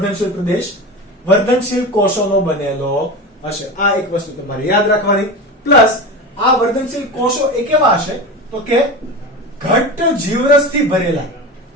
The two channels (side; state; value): both; normal; correlation 0.25